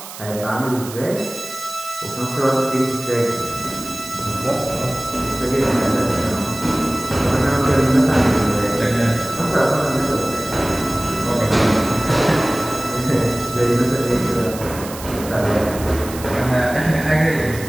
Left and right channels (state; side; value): noise; right; hiss, 13 dB below the sound